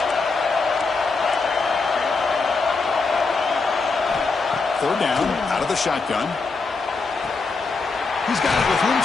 Third down, out of the shotgun. He's got it with room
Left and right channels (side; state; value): right; quieter; 4.2 dB